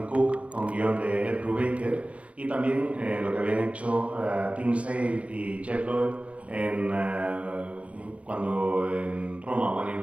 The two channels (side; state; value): left; late; 0.063 ms